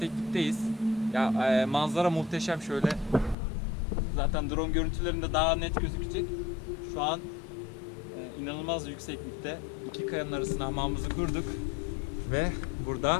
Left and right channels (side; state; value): right; drops out; at 3.4 s